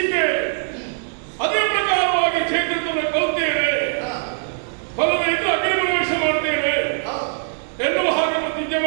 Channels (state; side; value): silent; left; digital silence